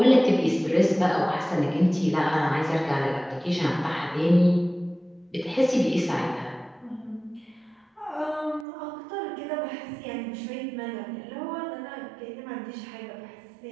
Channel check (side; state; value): left; drops out; at 8.7 s